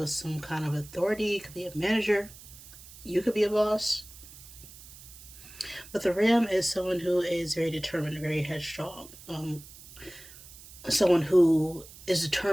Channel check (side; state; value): right; noise; hiss, 18 dB below the sound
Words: some kind of authority. It could be a manager. You could be a boss. But the ram is someone who is very determined, very headstrong. Someone who is